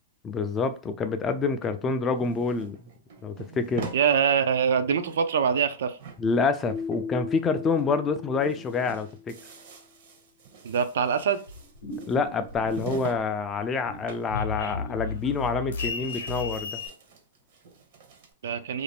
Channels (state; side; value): normal; both; correlation 0.06